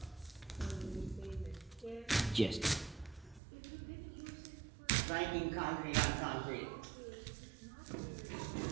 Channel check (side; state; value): left; drops out; at 3.4 s